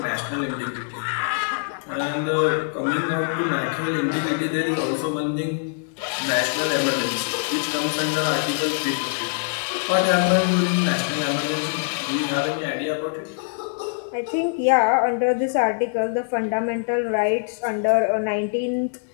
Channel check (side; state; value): right; silent; digital silence